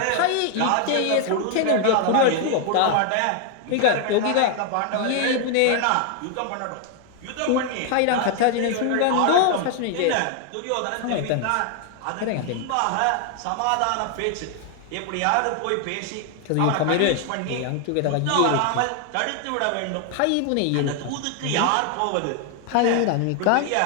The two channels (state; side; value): different; both; correlation 0.00